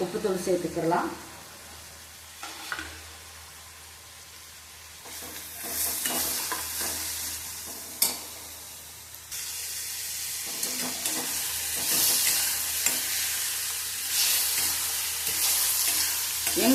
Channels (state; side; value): identical; both; correlation 1.00